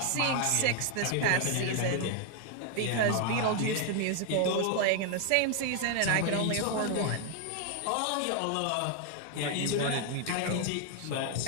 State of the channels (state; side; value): different; both; correlation 0.00